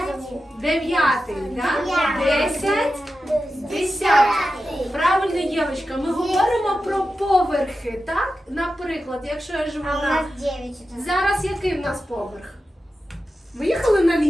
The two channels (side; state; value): both; normal; correlation 0.91